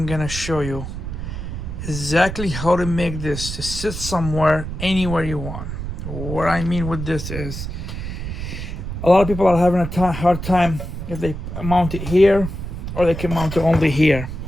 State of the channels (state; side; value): noise; right; rumble, 7 dB below the sound